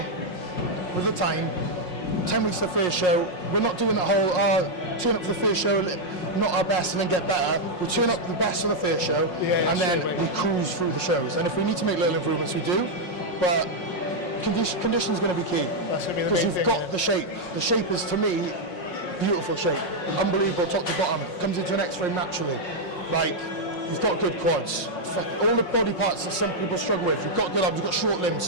with the time, 10 weeks to the first show, we're not doing that whole, turn up for the first show, not our best and then get better. We turn up the best for the first show, and then we cruise through the shows. And if we need to make little improvements, we do. But condition is going to be key. Because you've got the shape. The shape is, to me, beautiful shape. Unbelievable, top to bottom. Comes into an X-frame naturally. Like, you've got good quads. All the body parts that some people struggle with. You've got good arms, you've got short limbs,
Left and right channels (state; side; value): late; right; 5.5 ms